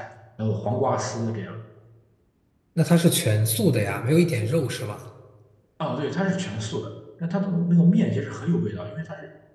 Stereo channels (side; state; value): both; identical; correlation 1.00